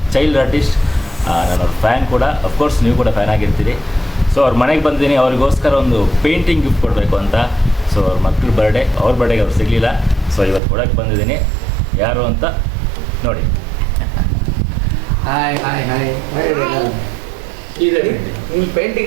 ಚೈಲ್ಡ್ ಆರ್ಟಿಸ್ಟ್. ನಾನು ಅವ್ರ ಫ್ಯಾನ್ ಕೂಡ. ಅಫ್ಕೋರ್ಸ್ ನೀವು ಕೂಡ ಫ್ಯಾನ್ ಆಗಿರ್ತೀರಿ. ಸೊ ಅವ್ರ ಮನೆಗೆ ಬಂದಿದ್ದೀನಿ, ಅವ್ರಿಗೋಸ್ಕರ ಒಂದು ಪೇಂಟಿಂಗ್ ಗಿಫ್ಟ್ ಕೊಡಬೇಕು ಅಂತ. ಸೊ ಅವ್ರ ಮಕ್ಕಳ ಬರ್ಡೇ, ಅವ್ರ ಬರ್ಡೇಗೆ ಅವ್ರು ಸಿಗಲಿಲ್ಲ. ಸೊ ಇವತ್ತು ಕೊಡೋಕ್ಕೆ ಬಂದಿದ್ದೀನಿ. ಯಾರು ಅಂತ ನೋಡಿ. ಹಾಯ್ ಹಾಯ್ ಹಾಯ್ ಇಲ್ಲಿ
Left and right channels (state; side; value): drops out; left; at 10.6 s